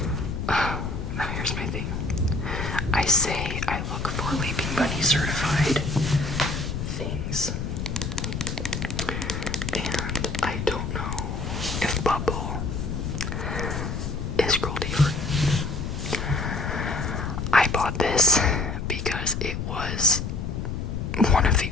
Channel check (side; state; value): left; noise; rumble, 4 dB below the sound